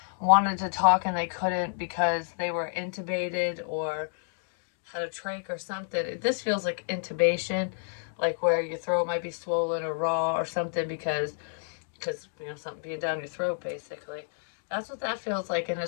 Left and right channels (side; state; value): right; silent; digital silence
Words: wanted to talk and they couldn't because they were intubated or had a trach or something. This feels like intubation, like where your throat might be swollen or raw or something because something being down your throat basically. That's what that feels like, and